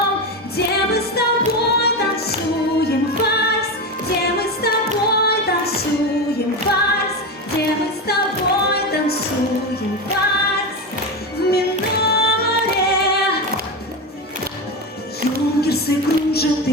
где мы с тобой танцуем вальс, где мы с тобой танцуем вальс, где мы с тобой танцуем вальс в миноре. Юнгерсы кружат и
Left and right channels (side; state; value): both; normal; correlation 0.18